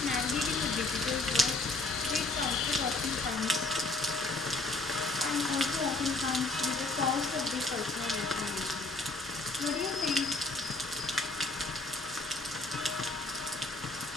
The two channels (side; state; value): right; quieter; 3.0 dB